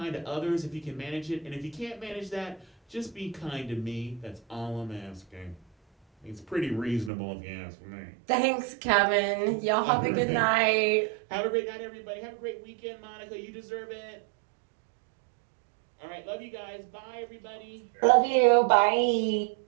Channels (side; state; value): left; drops out; at 7.1 s